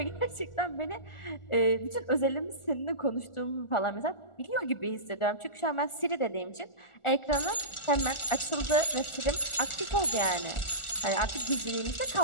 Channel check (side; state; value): right; late; 1.4 ms